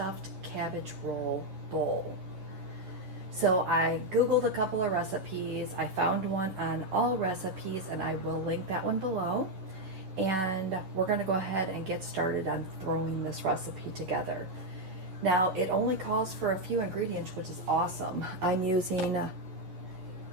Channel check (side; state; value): left; late; 11 ms